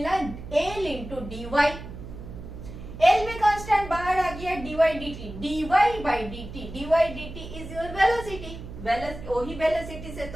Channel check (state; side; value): noise; right; hum, 12 dB below the sound